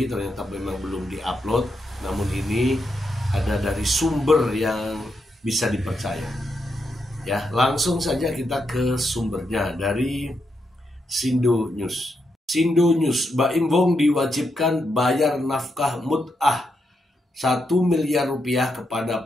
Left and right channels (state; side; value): normal; both; correlation 0.82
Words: ternyata memang belum diupload. Namun ini ada dari sumber yang bisa dipercaya. Ya, langsung saja kita ke sumbernya dari Sindo News. Sindo News, Baim Wong diwajibkan bayar nafkah mut'ah 1 miliar rupiah